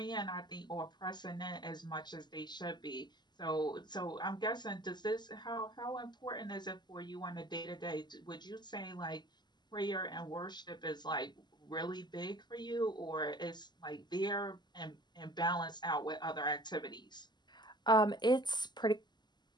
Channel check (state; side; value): late; right; 0.21 ms